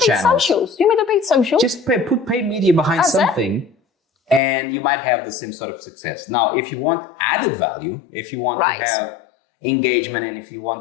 You made a paid social. Just put paid media behind something, and you might have the same sort of success. Now, if you want added value, if you want to have engagement, and if you want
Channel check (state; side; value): drops out; right; at 4.4 s